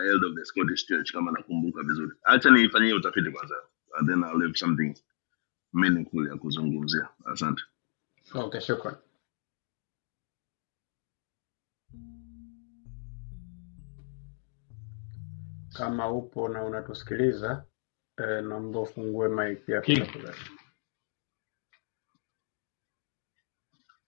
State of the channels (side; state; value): right; silent; 57 dB below the other